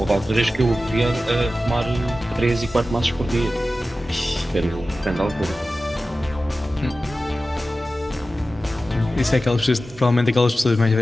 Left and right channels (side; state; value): both; normal; correlation 0.94